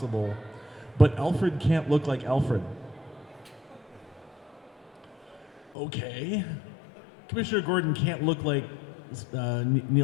but Alfred can't look like Alfred. Okay. Commissioner Gordon can't look like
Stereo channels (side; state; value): right; drops out; at 5.8 s